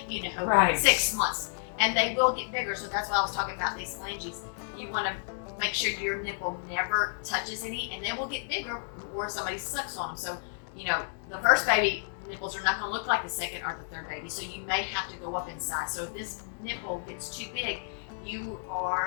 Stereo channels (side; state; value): right; silent; digital silence